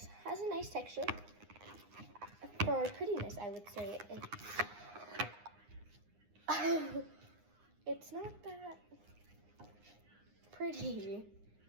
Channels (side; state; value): left; late; 9.7 ms